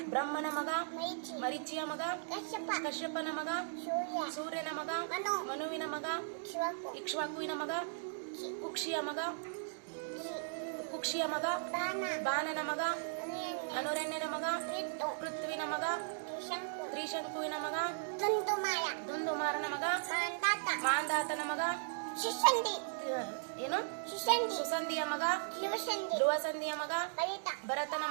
ಬ್ರಹ್ಮನ ಮಗ ಮರೀಚಿಯ ಮಗ ಕಶ್ಯಪನ ಮಗ ಸೂರ್ಯನ ಮಗ ಮನುವಿನ ಮಗ ಇಕ್ಷ್ವಾಕುವಿನ ಮಗ ಕುಕ್ಷಿಯ ಮಗ ಬಾಣನ ಮಗ ಅನುರಣ್ಯನ ಮಗ ಪೃಥ್ವಿನ ಮಗ ತ್ರಿಶಂಕುವಿನ ಮಗ ದುಂದುಮಾರನ ಮಗ ಮಾಂದಾತನ ಮಗ ಏನು ಸುಸಂಧಿಯ ಮಗ ಧ್ರುವಸಂಧಿಯ ಮಗ ಭರತನ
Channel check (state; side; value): silent; left; digital silence